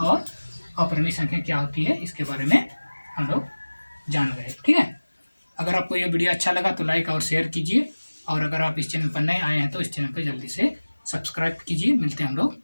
अपरिमेय संख्या क्या होती है, इसके बारे में हम लोग जान गए। ठीक है, अगर आपको यह वीडियो अच्छा लगा तो लाइक और शेयर कीजिए, और अगर आप इस चैनल पर नए आए हैं तो इस चैनल पर जल्दी से सब्सक्राइब कीजिए। मिलते हैं हम लोग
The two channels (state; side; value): inverted; both; correlation -1.00